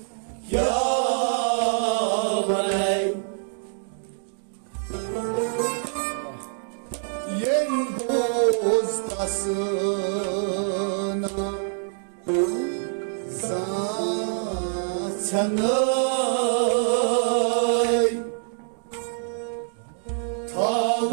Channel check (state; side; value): silent; left; digital silence